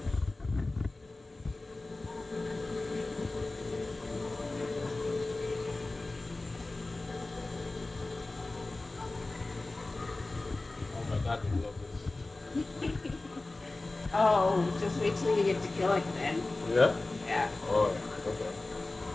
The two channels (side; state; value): right; quieter; 3.1 dB